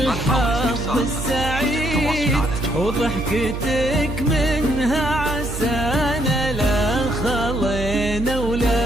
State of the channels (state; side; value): noise; right; hum, 6 dB below the sound